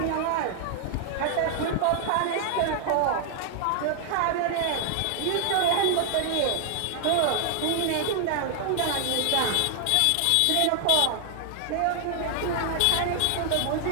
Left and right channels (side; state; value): both; different; correlation 0.00